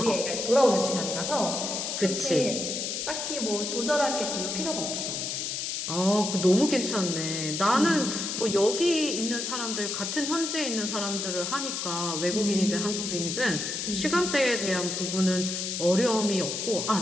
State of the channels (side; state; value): left; noise; hiss, 3 dB below the sound